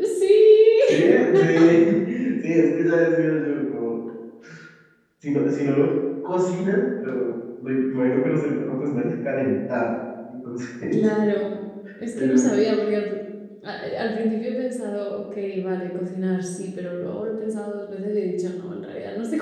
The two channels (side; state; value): both; identical; correlation 1.00